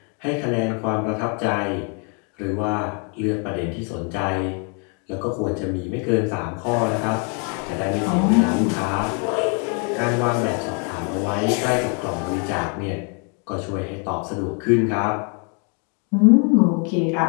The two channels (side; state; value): right; quieter; 38.1 dB